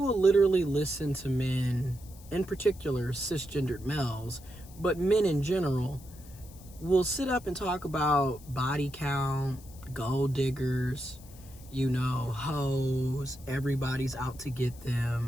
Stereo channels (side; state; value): left; noise; hiss, 22 dB below the sound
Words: literally listen to men, in particular cisgendered males, but men in general, will sit up and talk about body count, gold diggers, hoes, everybody's out to get